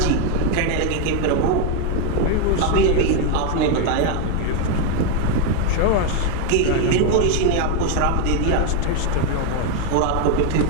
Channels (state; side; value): different; both; correlation 0.01